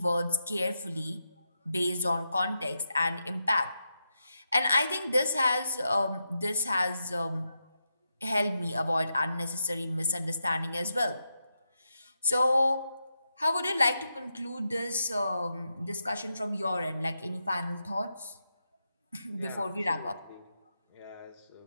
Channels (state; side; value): inverted; both; correlation -0.86